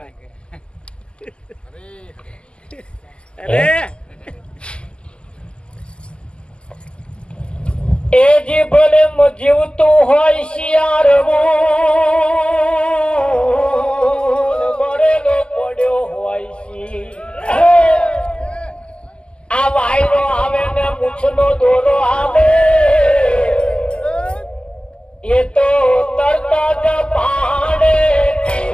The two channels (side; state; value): right; late; 0.050 ms